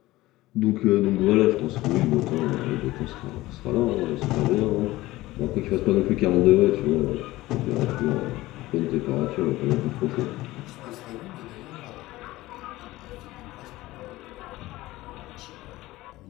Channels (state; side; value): quieter; right; 18.0 dB